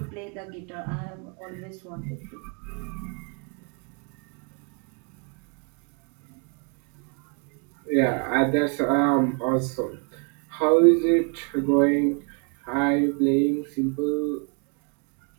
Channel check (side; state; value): left; quieter; 36.4 dB